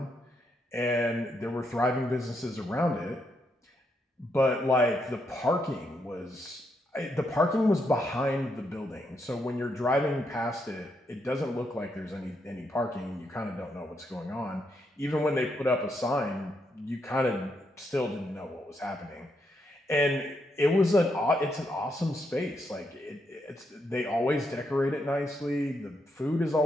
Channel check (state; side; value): normal; both; correlation 0.79